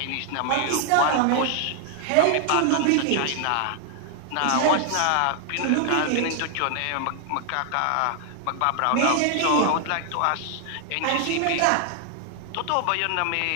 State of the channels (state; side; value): different; both; correlation 0.00